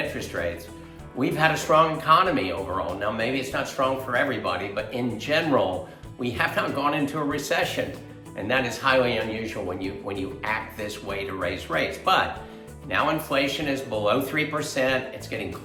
rates, we've had a strong economy overall. Now, maybe it's not strong for everybody, but in general, we have not gone into a recession, and that is highly unusual when you act this way to raise rates. But now inflation is below 3%. It's getting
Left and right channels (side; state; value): both; identical; correlation 1.00